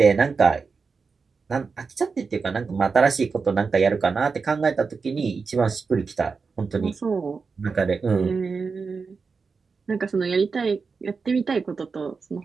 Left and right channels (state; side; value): quieter; left; 4.9 dB